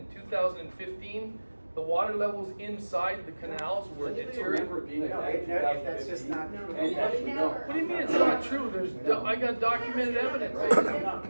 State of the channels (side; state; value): both; inverted; correlation -1.00